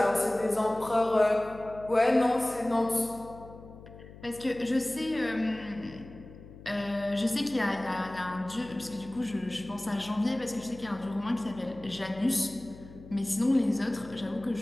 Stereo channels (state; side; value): noise; left; hum, 18 dB below the sound